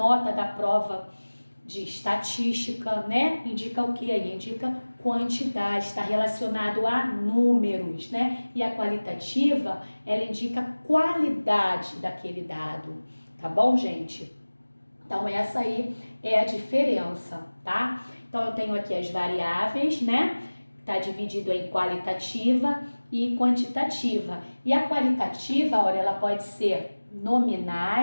da prova de estatística, né? Indica o que aí? Indica quantidade, está relacionado a números, né? E a qualitativa, ela indica qualidade daquele dado, tá bom, gente? Então, essa aí é a diferença, tá? Então, eu tenho aqui as variáveis, né? Tá dividido em qualitativa e quantitativa. E a qualitativa, olha, ela pode ser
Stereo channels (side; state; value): both; inverted; correlation -1.00